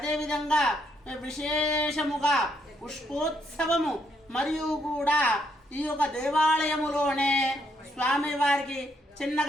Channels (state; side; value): normal; both; correlation 0.74